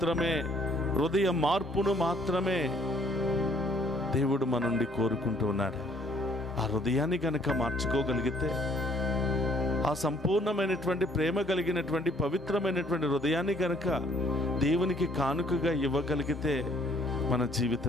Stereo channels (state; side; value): normal; both; correlation 0.62